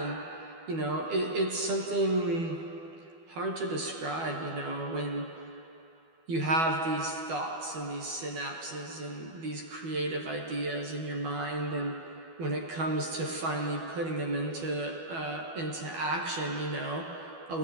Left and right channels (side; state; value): left; late; 12 ms